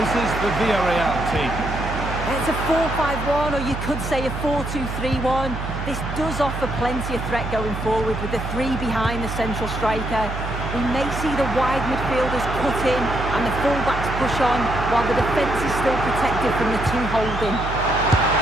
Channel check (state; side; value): noise; right; hum, 6 dB below the sound